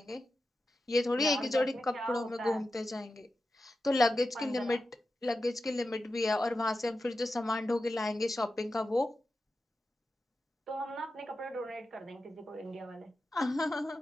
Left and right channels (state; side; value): normal; both; correlation 0.91